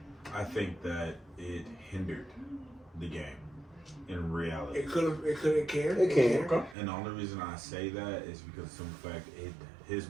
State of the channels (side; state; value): left; drops out; at 6.8 s